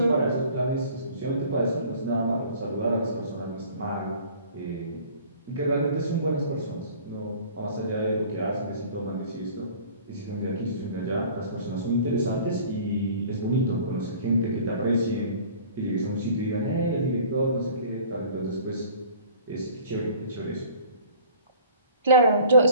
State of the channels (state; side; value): inverted; both; correlation -0.49